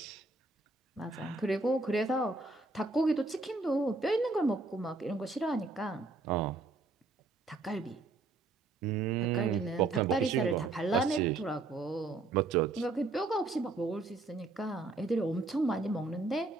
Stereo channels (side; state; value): left; quieter; 3.4 dB